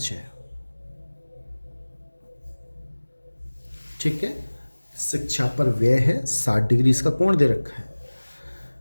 है। ठीक है, शिक्षा पर व्यय है, 60 डिग्री इसका कोण दे रखा है।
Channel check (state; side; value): inverted; both; correlation -1.00